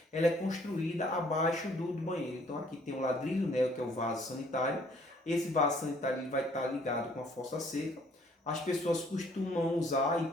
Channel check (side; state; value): both; normal; correlation 0.61